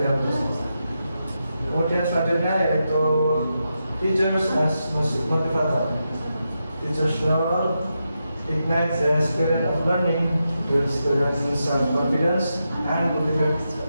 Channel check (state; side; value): inverted; both; correlation -0.87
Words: hal tersebut. Kemudian selanjutnya yaitu teachers as motivator. Teachers role ignite the spirit of learning, build students self-confidence and